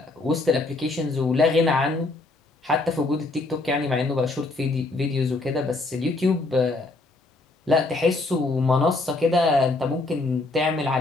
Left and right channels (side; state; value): right; quieter; 3.2 dB